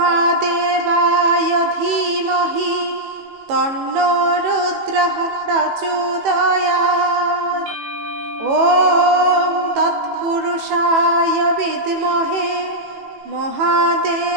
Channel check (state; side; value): late; left; 18 ms